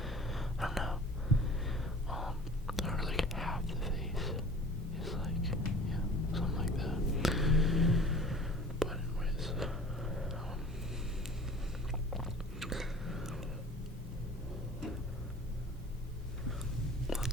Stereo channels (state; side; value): normal; both; correlation 0.45